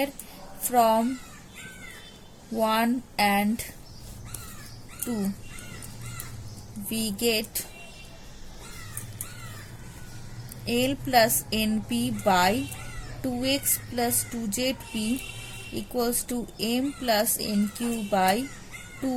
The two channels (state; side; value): identical; both; correlation 1.00